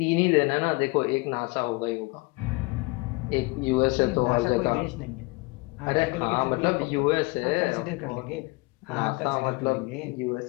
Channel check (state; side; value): quieter; right; 25.6 dB